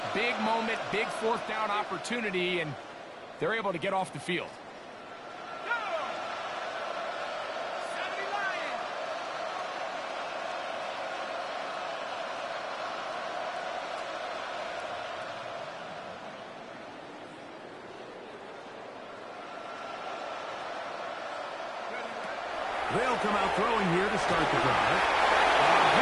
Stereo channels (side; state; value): both; identical; correlation 1.00